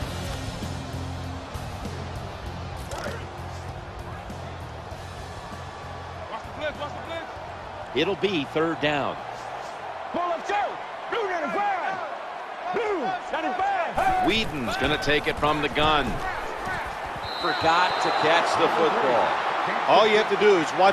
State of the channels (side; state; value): both; identical; correlation 1.00